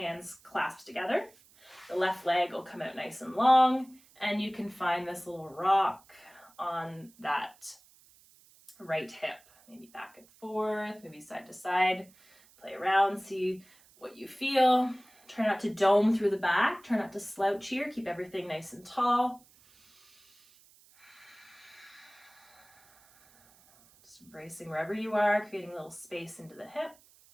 clasped together. The left leg will come out nice and long, and you can find this little rock on that right hip. Maybe back and forth, maybe side to side. Play around, see what you feel. Try not to dome through the back. Try not to slouch here. Keep everything nice and tall. Just embracing wherever you are, creating a little space into the hip.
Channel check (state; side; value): noise; right; hiss, 28 dB below the sound